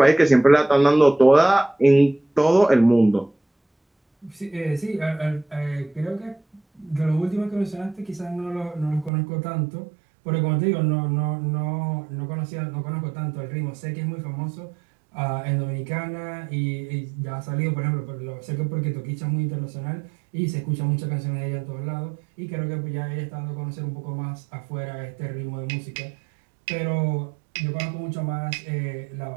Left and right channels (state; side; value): drops out; left; at 9.1 s